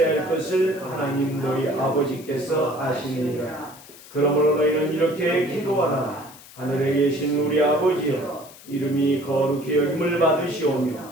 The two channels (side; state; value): left; noise; hiss, 20 dB below the sound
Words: 할 것을 하나님 너희 아버지께서 아시느니라. 그러므로 너희는 이렇게 기도하라. 하늘에 계신 우리 아버지여, 이름이 거룩히 여김을 받으시오며